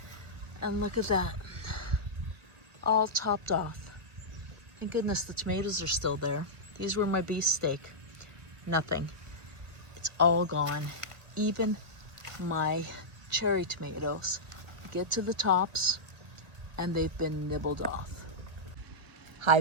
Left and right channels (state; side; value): late; left; 1.2 ms